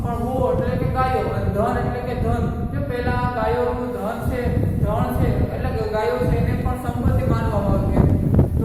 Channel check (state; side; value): identical; both; correlation 1.00